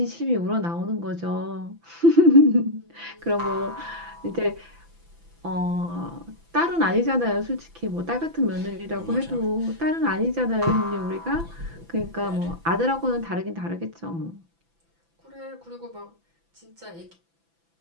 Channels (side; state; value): left; late; 6.0 ms